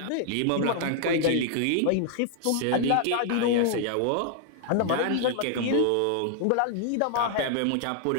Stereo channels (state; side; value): different; both; correlation 0.00